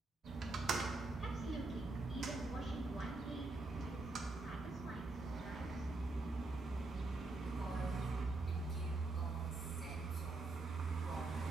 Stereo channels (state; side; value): quieter; left; 3.2 dB